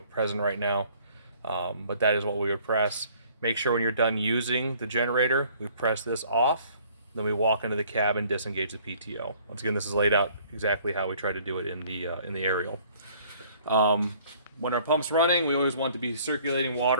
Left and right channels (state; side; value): inverted; both; correlation -0.57